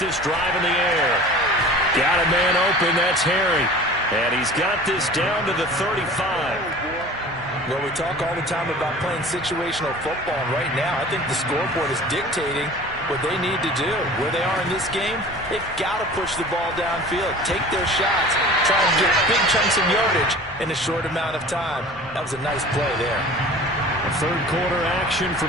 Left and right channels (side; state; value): both; normal; correlation 0.42